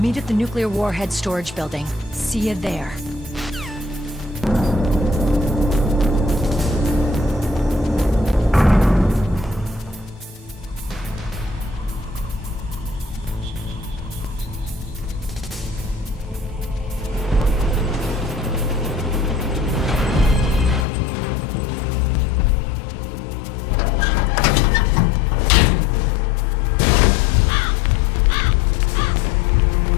at the nuclear warhead storage building. See you there.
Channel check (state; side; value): drops out; right; at 20.9 s